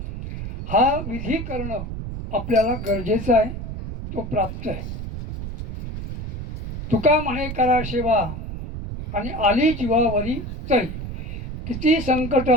हा विधी करणं आपल्याला गरजेचं आहे, तो प्राप्त आहे. तुका म्हणे करा सेवा आणि आली जीवावरी तरी, किती संकट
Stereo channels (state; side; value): noise; right; rumble, 7 dB below the sound